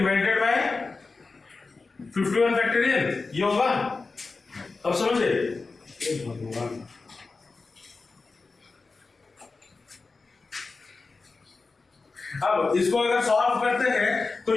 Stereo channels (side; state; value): right; quieter; 4.0 dB